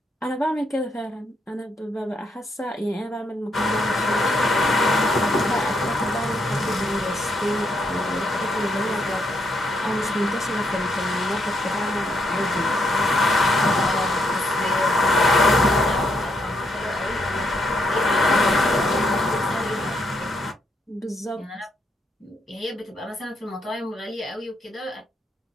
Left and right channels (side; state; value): both; normal; correlation 0.76